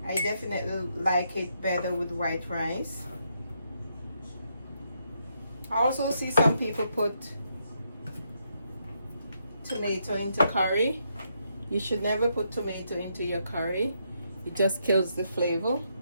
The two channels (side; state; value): both; inverted; correlation -0.78